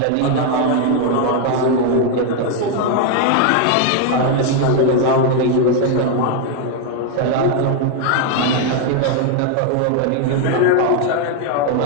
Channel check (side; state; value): both; different; correlation 0.00